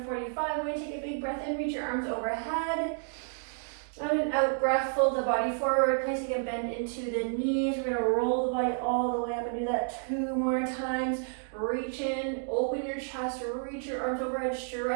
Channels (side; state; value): left; silent; digital silence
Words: 45. We're gonna take a big breath in, reach your arms overhead. On an out breath, fold the body forward, placing a bend into the knees. We're gonna roll the body all the way up and do that 2 more times. Reach in, open your chest, reach your arms overhead,